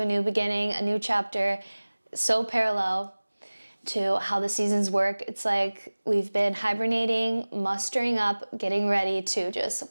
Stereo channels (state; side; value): inverted; both; correlation -1.00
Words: new beginning, a new chapter, so parallel to how the seasons work. It's like we've been hibernating, mustering up, getting ready to